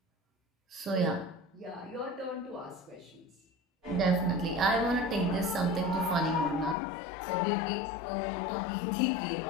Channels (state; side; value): drops out; right; at 6.8 s